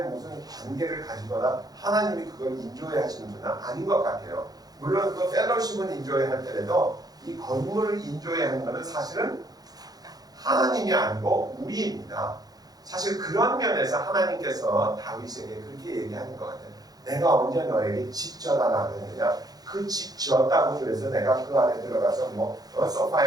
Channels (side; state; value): left; late; 0.19 ms